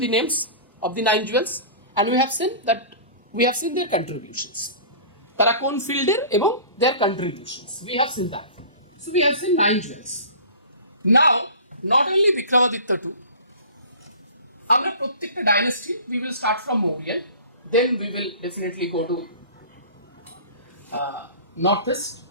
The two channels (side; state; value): both; inverted; correlation -0.40